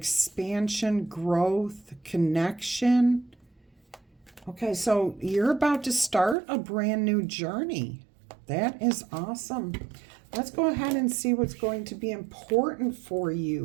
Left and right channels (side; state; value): left; drops out; at 6.4 s